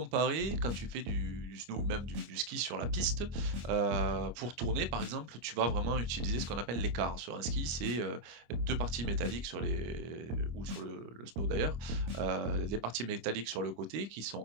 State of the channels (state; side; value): late; left; 25 ms